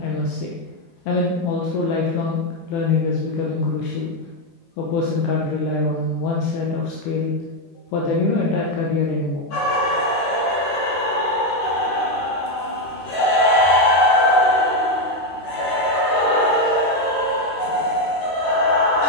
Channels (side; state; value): right; late; 8.4 ms